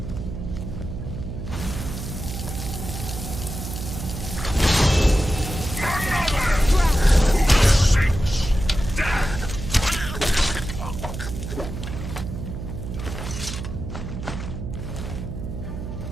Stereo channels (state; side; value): noise; right; hum, 7 dB below the sound